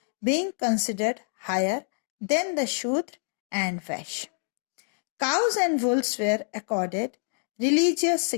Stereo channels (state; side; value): silent; right; digital silence